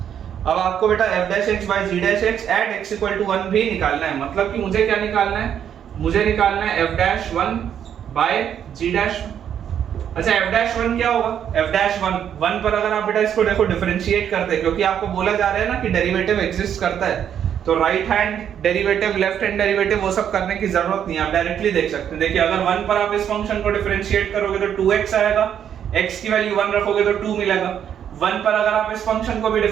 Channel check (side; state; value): left; quieter; 9.1 dB